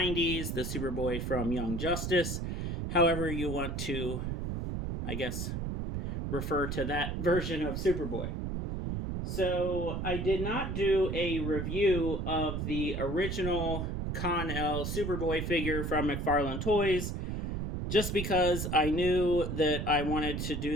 the Superboy from Young Justice, however you want to, I guess, refer to that version of Superboy. So I did not do a review of the original Con-El Superboy figure from McFarlane Toys, just because I knew that I wanted to do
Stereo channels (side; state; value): right; noise; rumble, 3 dB below the sound